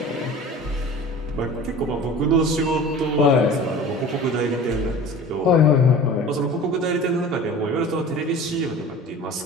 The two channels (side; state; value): both; normal; correlation 0.39